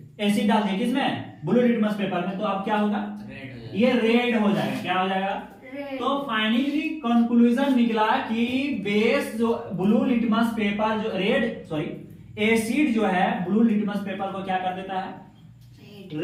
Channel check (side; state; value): both; identical; correlation 1.00